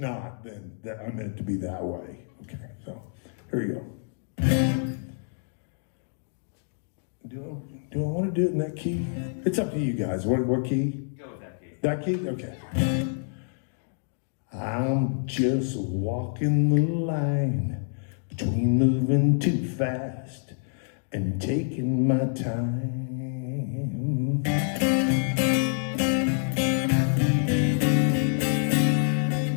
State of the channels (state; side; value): silent; right; digital silence